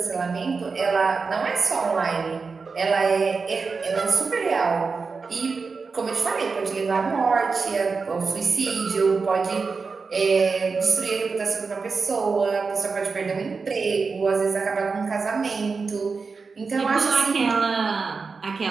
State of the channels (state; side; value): quieter; left; 4.7 dB